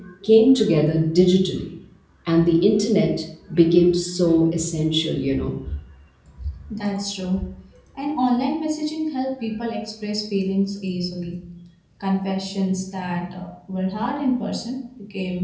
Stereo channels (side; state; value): both; identical; correlation 1.00